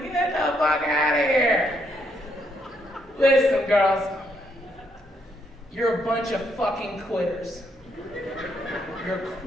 Get the fuck out of here. Listen, girls. You're a bunch of fucking quitters. You're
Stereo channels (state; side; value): normal; both; correlation 0.75